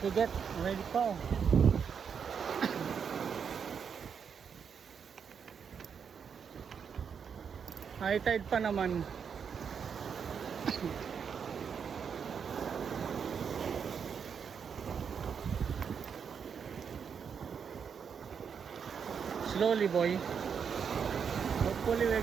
we get. Ready pa, oh. High tide pa naman. Slowly, boy. Hopefully we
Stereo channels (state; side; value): quieter; left; 6.8 dB